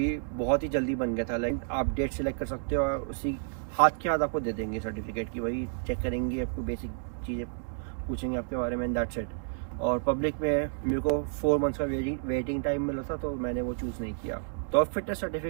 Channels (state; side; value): silent; left; digital silence